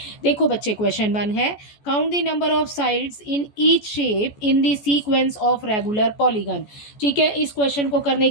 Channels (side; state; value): right; late; 14 ms